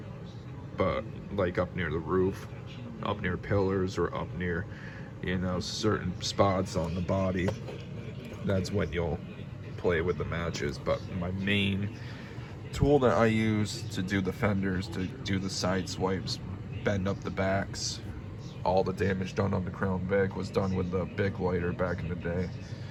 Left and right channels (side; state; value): both; identical; correlation 1.00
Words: but like up near the roof, up near pillars, or up near certain spots on the body, that's when you'll play with the matches. But my main tool that I use to do the fenders, to do the side swipes, bend up the backs, all the damage done on the Crown Vic was done with the Bic lighter back in the day.